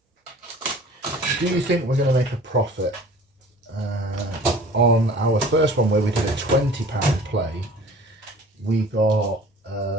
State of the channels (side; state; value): both; normal; correlation 0.46